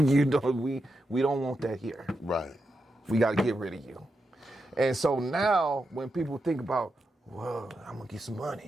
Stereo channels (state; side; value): normal; both; correlation 0.86